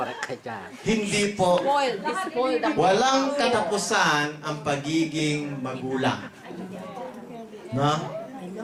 ka dyan. Hindi po. Spoiled. Spoiled ang Walang katapusan ang pagiging magulang. No?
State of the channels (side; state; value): both; identical; correlation 1.00